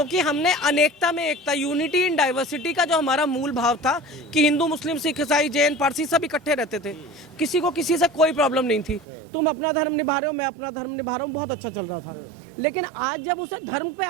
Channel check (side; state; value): left; drops out; at 9.1 s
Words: हमने अनेकता में एकता, यूनिटी इन डाइवर्सिटी का जो हमारा मूल भाव था कि हिंदू मुस्लिम सिख ईसाई जैन पारसी सब इकट्ठे रहते थे, किसी को किसी से कोई प्रॉब्लम नहीं थी। तुम अपना धर्म निभा रहे हो, मैं अपना धर्म निभा रहा हूँ, बहुत अच्छा चल रहा था। लेकिन आज जब उसे धर्म पे